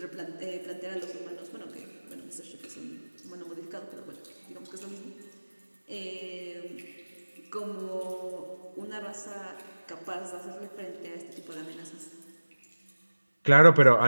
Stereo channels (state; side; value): inverted; both; correlation -1.00